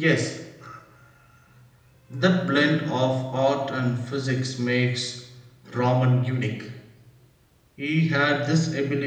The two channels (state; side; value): identical; both; correlation 1.00